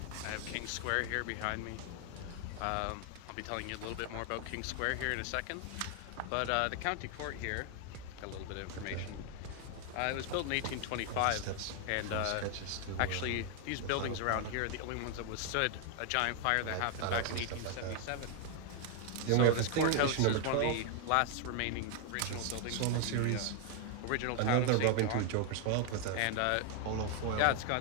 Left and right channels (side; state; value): both; different; correlation 0.01